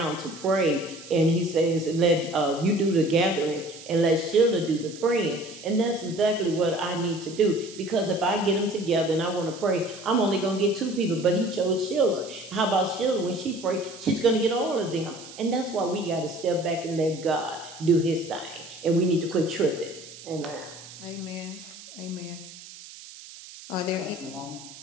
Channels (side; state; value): right; noise; hiss, 16 dB below the sound